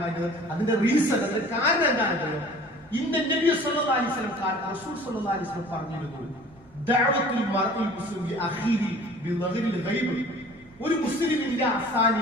അതിന്റെ റീസൺ, അതിന്റെ കാരണം എന്താണെന്നറിയോ? ഇന്ന നബി സല്ലല്ലാഹു അലൈഹി വസല്ലം റസൂൽ സല്ലല്ലാഹു അലൈഹി വസല്ലം പറഞ്ഞിരുന്നു, ദഅവത്തുൽ മർഇ മുസ്ലിം അഖീരി ബിളഗ്രിൽ ഗൈബ്. ഒരു മുസ്ലിമിന്റെ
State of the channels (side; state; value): right; noise; rumble, 28 dB below the sound